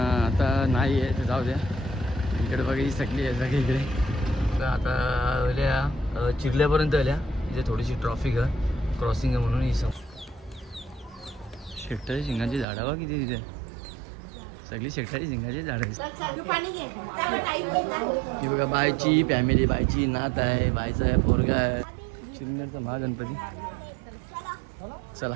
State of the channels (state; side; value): drops out; left; at 12.7 s